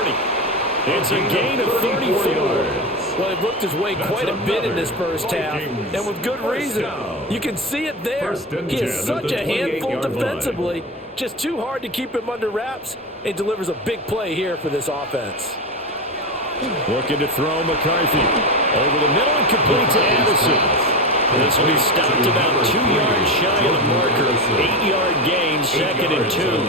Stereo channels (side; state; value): both; normal; correlation 0.20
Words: It's a gain of 34. Well, he worked his way quite a bit in this first half, and with good reason. You can see it there. He is such a handful defensively. Just too hard to keep him under wraps. He delivers a big play here for this offense. Looking to throw McCarthy. Over the middle and complete to Addison. This will be stopped about 2 yards shy of the marker. 8-yard gain, 2nd and 2.